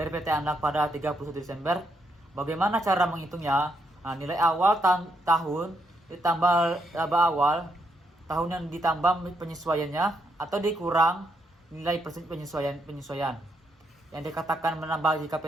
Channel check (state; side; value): normal; both; correlation 0.77